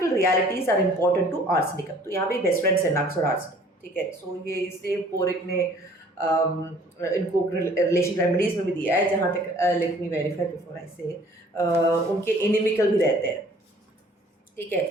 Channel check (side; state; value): both; normal; correlation 0.54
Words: realities are important to arsenicum. तो यहाँ पे best friends है नक्स और arsenic. ठीक है। सो ये इसलिए पोरिक ने इनको रिलेशन रेमेडीज में भी दिया है, जहाँ तक let me verify before I से, उनके इनिमिकल भी रहते हैं। ठीक है।